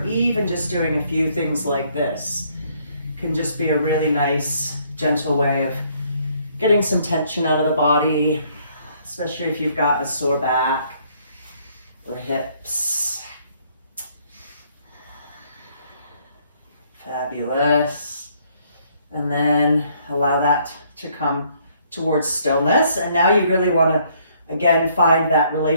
even just doing a few things like this can just be a really nice, gentle way of getting some tension out of the body, especially if you've got a sore back or hips. Fabulous. And then allow that to come towards stillness. And now you really want to, again, find that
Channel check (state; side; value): inverted; both; correlation -0.66